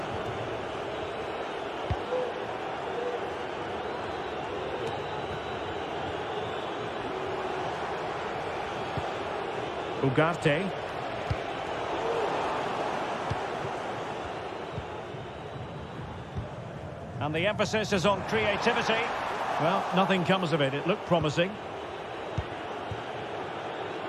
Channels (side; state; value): both; identical; correlation 1.00